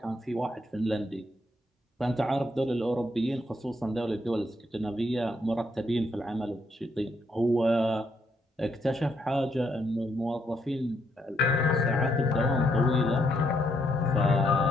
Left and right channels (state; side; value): normal; both; correlation 0.75